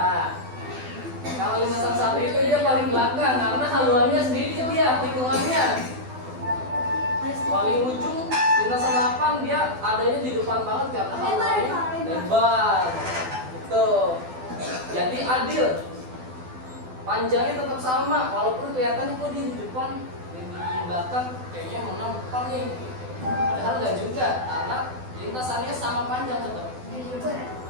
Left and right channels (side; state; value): left; late; 12 ms